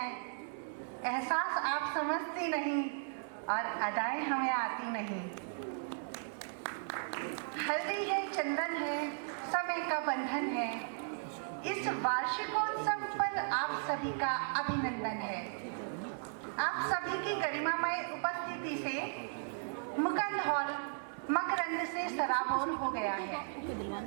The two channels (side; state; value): left; silent; digital silence